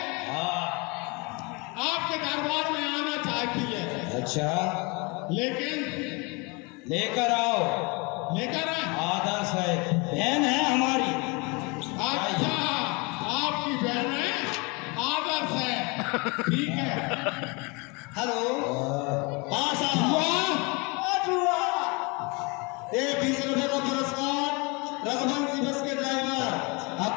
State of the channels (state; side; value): quieter; right; 28.9 dB